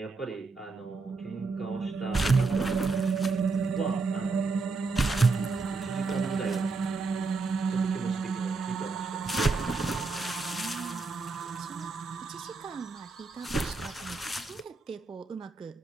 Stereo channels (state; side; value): quieter; left; 4.0 dB